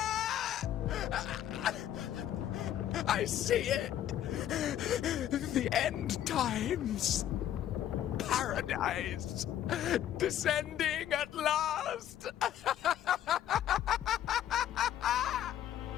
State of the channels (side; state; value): right; quieter; 11.4 dB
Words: I see it. The end times. Paradise. Descending at last.